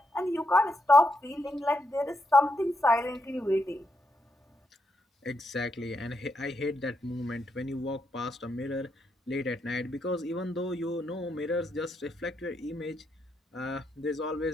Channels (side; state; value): both; normal; correlation 0.81